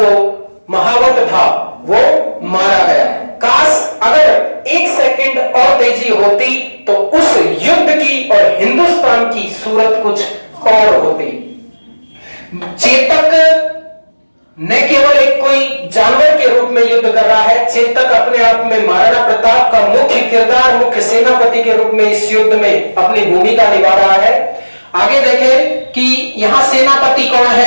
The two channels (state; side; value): inverted; both; correlation -1.00